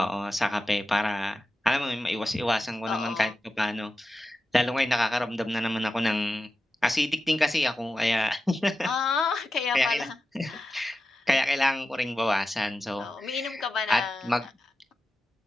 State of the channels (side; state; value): both; normal; correlation 0.92